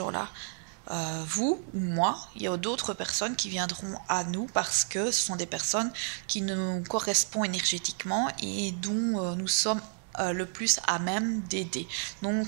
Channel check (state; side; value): silent; left; 57 dB below the other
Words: Vous ou moi, il y a d'autres personnes qui viendront à nous parce que ce sont des personnes qui nous correspondent énergétiquement et dont nous sommes le plus à même d'aider.